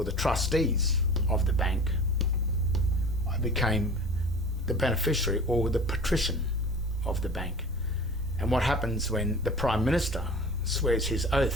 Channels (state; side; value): normal; both; correlation 0.40